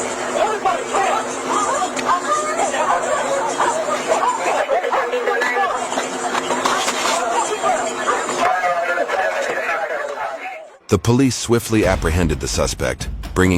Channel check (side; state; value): both; identical; correlation 1.00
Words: The police swiftly apprehended the suspect,